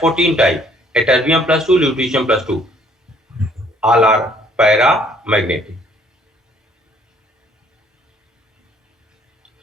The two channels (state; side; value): normal; both; correlation 0.62